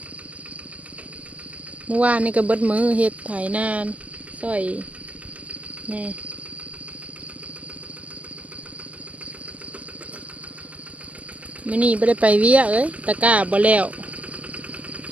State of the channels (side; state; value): left; late; 0.072 ms